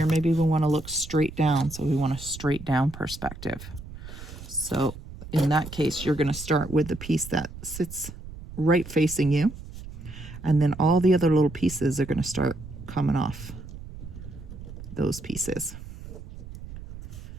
Maybe we want to look straight down. So we want a straight down perspective. So in that case, you're going to start with the piece that sits right facing you. And then all the other little pieces are going to start coming off those pieces.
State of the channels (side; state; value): right; noise; rumble, 13 dB below the sound